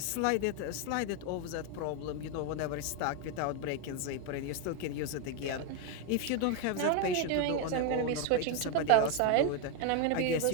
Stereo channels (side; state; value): both; different; correlation 0.01